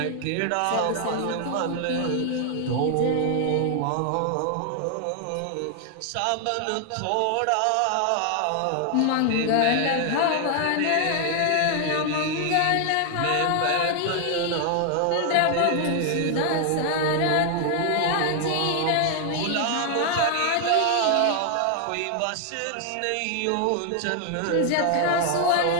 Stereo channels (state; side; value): different; both; correlation 0.00